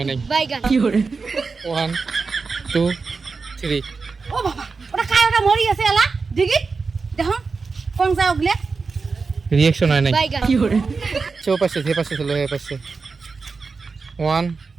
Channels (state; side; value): quieter; left; 4.6 dB